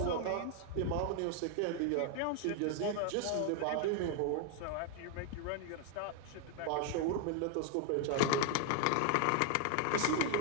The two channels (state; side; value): different; both; correlation 0.00